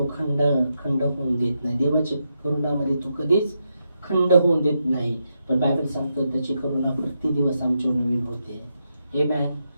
खंड होऊन देत नाही. देवाच्या करुणामध्ये तो कधीच खंड होऊन देत नाही. पण बायबल सांगतो त्याची करुणा प्रति दिवस आमच्यावर नवीन होते. आमेन.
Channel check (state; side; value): inverted; both; correlation -0.84